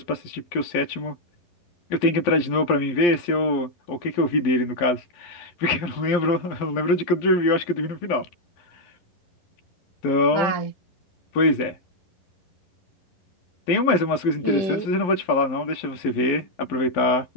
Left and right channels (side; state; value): right; late; 11 ms